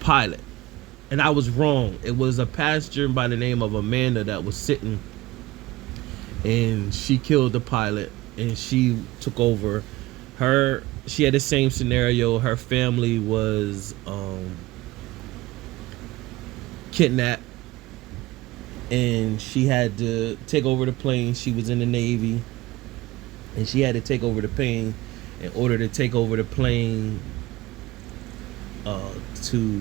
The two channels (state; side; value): quieter; left; 18.7 dB